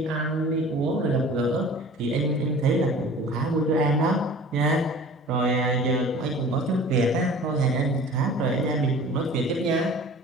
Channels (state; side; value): normal; both; correlation 0.43